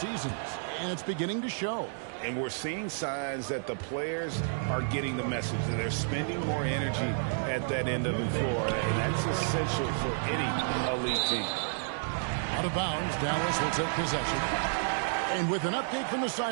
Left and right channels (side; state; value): left; silent; digital silence